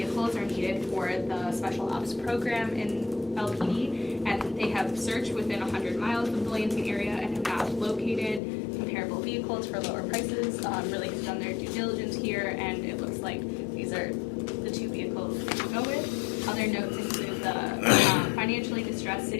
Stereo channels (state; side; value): drops out; right; at 8.4 s